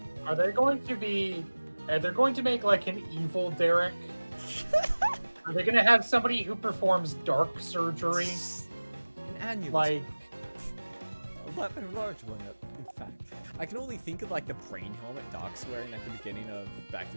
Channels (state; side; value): inverted; both; correlation -1.00